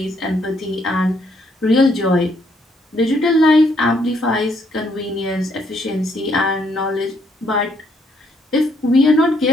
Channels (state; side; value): normal; both; correlation 0.71